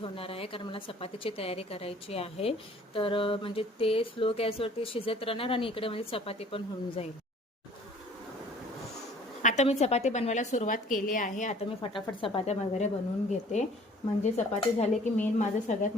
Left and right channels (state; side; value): normal; both; correlation 0.53